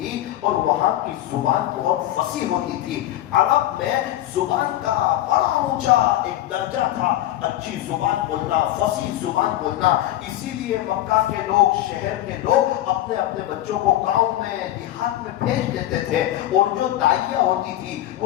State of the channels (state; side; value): quieter; right; 13.9 dB